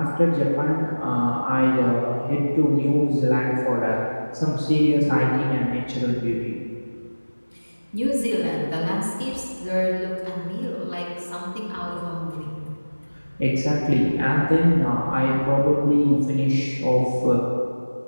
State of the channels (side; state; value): both; inverted; correlation -1.00